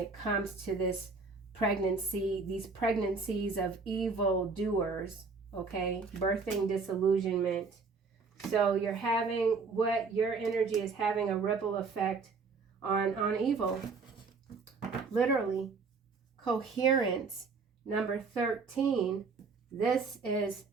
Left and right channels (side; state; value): left; quieter; 4.6 dB